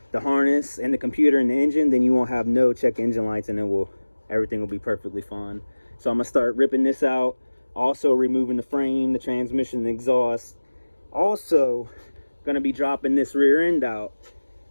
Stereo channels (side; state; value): both; inverted; correlation -1.00